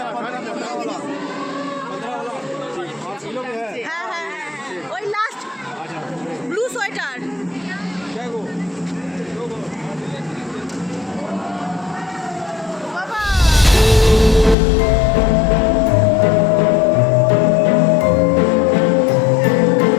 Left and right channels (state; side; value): drops out; right; at 14.6 s